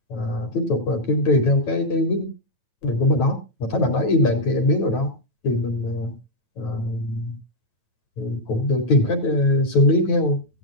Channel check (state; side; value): late; right; 9.1 ms